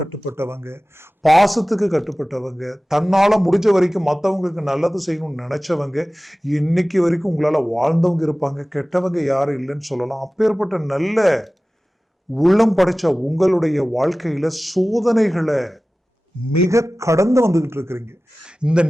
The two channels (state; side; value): normal; both; correlation 0.97